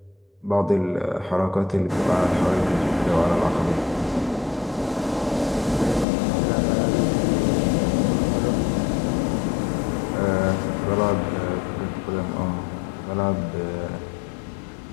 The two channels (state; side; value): drops out; right; at 6.1 s